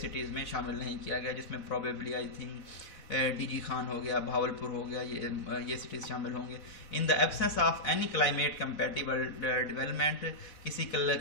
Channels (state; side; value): late; right; 4.0 ms